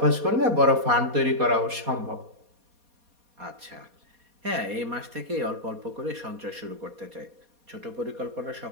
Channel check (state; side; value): late; left; 4.2 ms